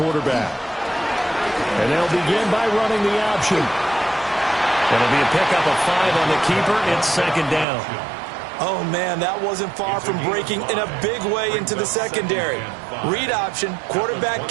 And they'll begin by running the option. It'll be a pickup of 5 on the keeper. It's second down. Oh, man, that wasn't far from breaking in a big way into the secondary. Read option, quarterback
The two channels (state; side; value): drops out; left; at 7.7 s